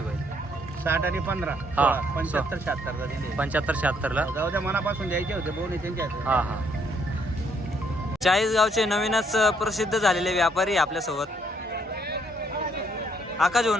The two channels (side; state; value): both; normal; correlation 0.69